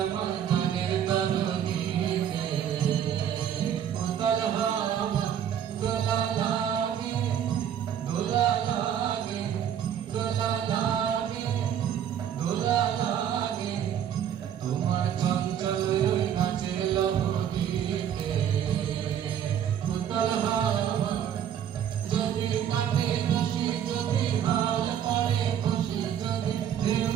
আমার গানের তলদেশে, উতল হাওয়া দোলা লাগে, দোলা লাগে, দোলা লাগে, দোলা লাগে, তোমার চঞ্চল ওই নাচের লহরীতে। উতল হাওয়া যদি কাটে রশি, যদি হাল পড়ে খুশি, যদি ঢেউ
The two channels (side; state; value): left; quieter; 9.5 dB